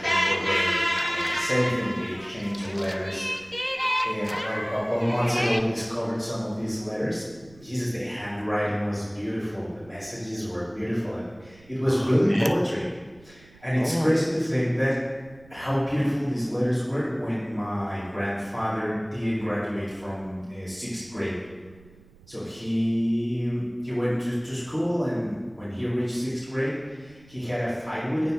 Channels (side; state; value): right; noise; rumble, 25 dB below the sound